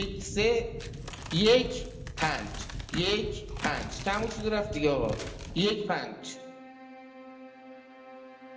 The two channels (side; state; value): both; identical; correlation 1.00